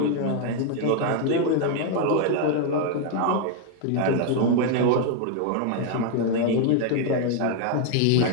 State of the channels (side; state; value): both; different; correlation 0.00